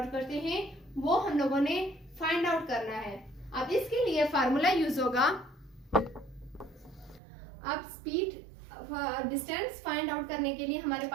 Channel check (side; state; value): left; drops out; at 7.2 s